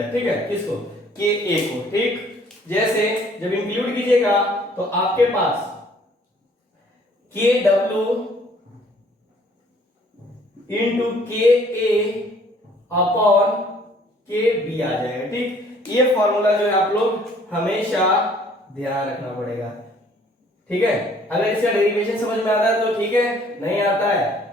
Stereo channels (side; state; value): both; normal; correlation 0.59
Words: ठीक है, किसको, के ए को। ठीक, जैसे जब इंक्लूड कीजिएगा तो आपके पास के डब्ल्यू इंटू के ए अपॉन के बी आ जाएगा। ठीक, ये फॉर्मूला जो है आप लोग हमेशा ध्यान रखना पड़ेगा। ठीक है, अगर इसका डेरिवेशन समझ में आता है तो ठीक है, नहीं आता है